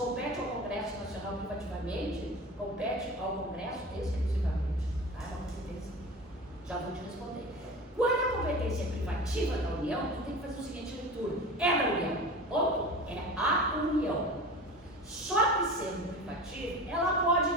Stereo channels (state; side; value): normal; both; correlation 0.33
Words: ao Congresso Nacional privativamente, compete ao Congresso exclusivamente. Tá? É uma competência. Já vou te responder. Quando a competência é privativa da União, tu tem que fazer o seguinte leitura. É da União. Ponto. É a União. Só que sendo privativa, ela pode